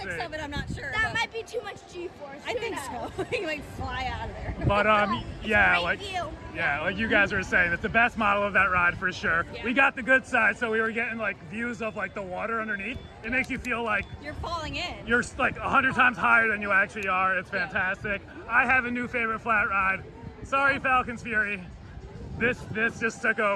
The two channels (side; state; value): both; identical; correlation 1.00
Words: see. of it, I'm not sure. That but might be too much G-force. I Who think knows? so. You might fly out of there. But yeah, Great like view. yeah, like you guys were saying, it's the best model of that ride for sure. Yeah. We got the good side, so we were getting like views of like the water underneath. It makes you feel like You're falling in. you're like 100 times higher than you actually are. It's fantastic. I have a new favorite flat ride. Sorry, Falcon's Fury. This just took